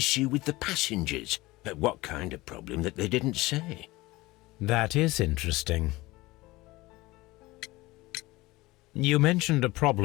with the passengers. But what kind of problem that they didn't say? That is interesting. You mentioned a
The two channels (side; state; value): right; quieter; 20.2 dB